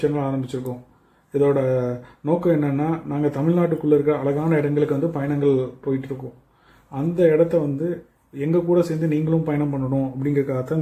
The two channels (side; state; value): both; identical; correlation 1.00